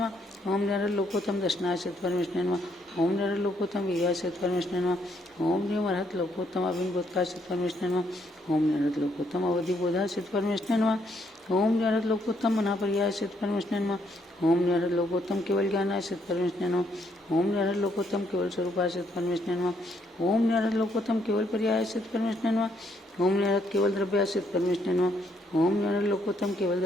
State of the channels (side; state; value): both; normal; correlation 0.72